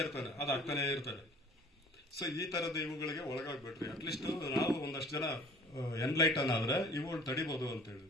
ಇರ್ತಾನೆ, ಅದು ಆಗ್ತಾನೆ ಇರ್ತಾರೆ. ಸೊ ಈ ತರದ ಇವುಗಳಿಗೆ ಒಳಗಾಗ್ಬಿಟ್ರಿ. ಅಟ್ಲೀಸ್ಟ್ ನಾವು ಒಂದಷ್ಟು ಜನ ಎನ್ಲೈಟನ್ ಆದ್ರೆ ಇವುಗಳು ತಡಿಬಹುದು ಅಂತ ಹೇಳಿ.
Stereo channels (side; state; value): both; normal; correlation 0.50